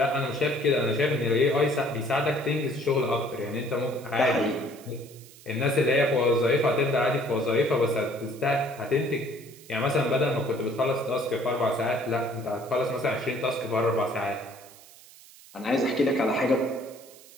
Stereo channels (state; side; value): noise; right; hiss, 22 dB below the sound